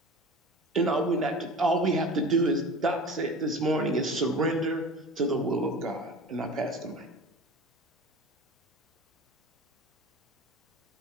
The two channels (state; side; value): normal; both; correlation 0.36